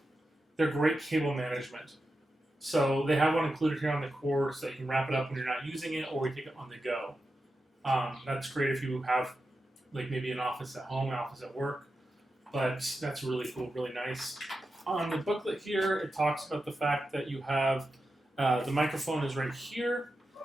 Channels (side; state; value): both; normal; correlation 0.90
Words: They're great cable management. So they have one included here on the cord so you can wrap it up when you're not using it or you take it on the go. That's great if you have maybe an office at home, an office at work. But that's really cool, really nice. On the booklet here, it talks about the fact that you have the microphone is right here,